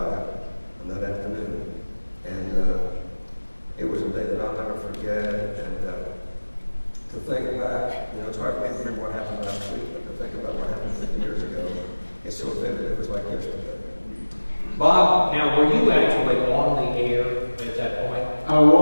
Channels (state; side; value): inverted; both; correlation -1.00